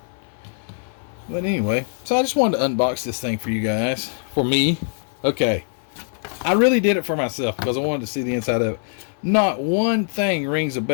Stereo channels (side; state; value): right; silent; 56 dB below the other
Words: But anyway, so I just wanted to unbox this thing for you guys. For me. Okay. I really did it for myself because I wanted to see the inside of it. Not one thing rings a